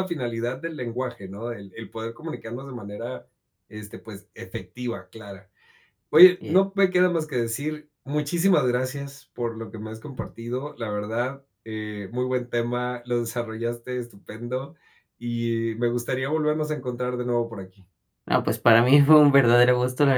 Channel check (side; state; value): both; identical; correlation 1.00